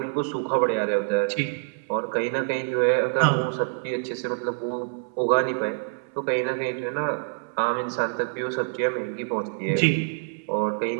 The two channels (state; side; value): silent; left; 61 dB below the other